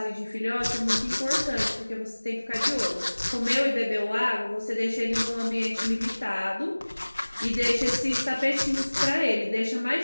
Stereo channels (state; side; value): inverted; both; correlation -1.00